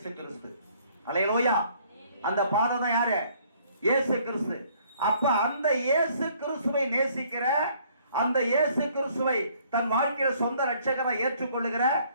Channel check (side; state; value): both; inverted; correlation -0.61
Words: கிறிஸ்து. அல்லேலூயா. அந்த பாதை தான் யாரு, இயேசு கிறிஸ்து. அப்ப அந்த இயேசு கிறிஸ்துவை நேசிக்கிற, அந்த இயேசு கிறிஸ்துவை தன் வாழ்க்கையில சொந்த ரட்சகரை ஏற்றுக்கொள்ளுகிற